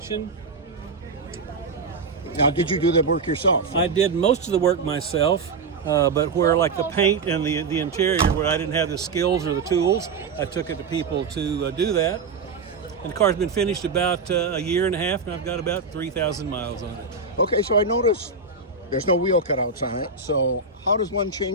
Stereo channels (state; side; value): quieter; left; 4.5 dB